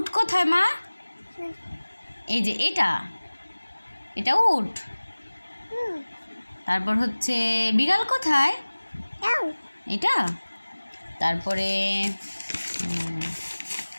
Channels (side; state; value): both; inverted; correlation -1.00